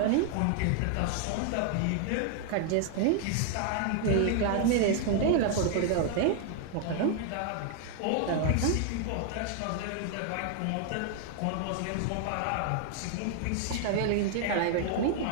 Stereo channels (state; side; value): different; both; correlation 0.00